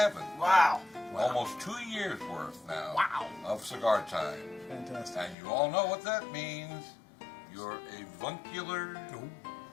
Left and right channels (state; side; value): drops out; right; at 5.4 s